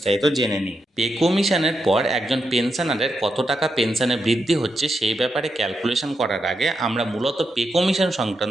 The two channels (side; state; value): both; normal; correlation 0.84